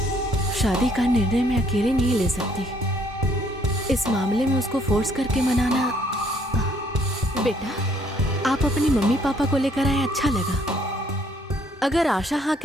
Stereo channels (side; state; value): both; normal; correlation 0.65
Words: शादी का निर्णय मैं अकेले नहीं ले सकती। इस मामले में उसको फोर्स करके मनाना। बेटा, आप अपनी मम्मी पापा को लेकर आए, अच्छा लगा। अगर आशा हाँ